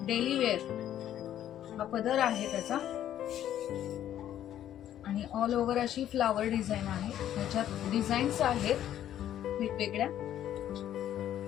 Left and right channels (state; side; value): quieter; right; 11.3 dB